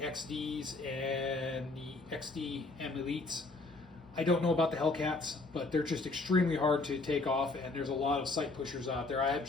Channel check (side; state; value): right; quieter; 3.4 dB